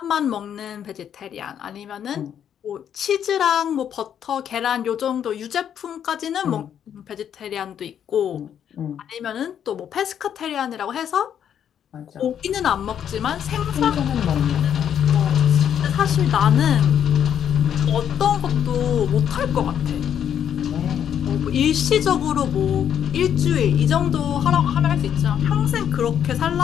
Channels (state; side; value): quieter; right; 9.1 dB